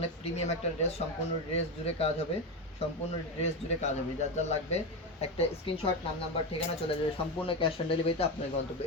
প্রিমিয়াম একটা ড্রেস। সম্পূর্ণ ড্রেস জুড়ে কাজ হবে, সম্পূর্ণ ড্রেস জুড়ে কাজ হবে। যার যার লাগবে একটা স্ক্রিনশট, নাম নাম্বার ঠিকানা চলে যাবে। সম্পূর্ণ ক্যাশ অন ডেলিভারিতে আপনার গন্তব্য।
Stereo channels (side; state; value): both; normal; correlation 0.15